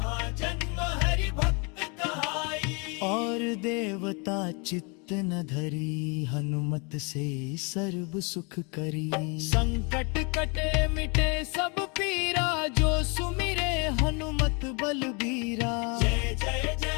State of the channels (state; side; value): quieter; right; 32.0 dB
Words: जन्म हरि भक्त कहाई। और देवता चित्त न धरी, हनुमत से सर्व सुख करी। संकट कटे मिटे सब पीरा, जो सुमिरे हनुमत बलबीरा। जय जय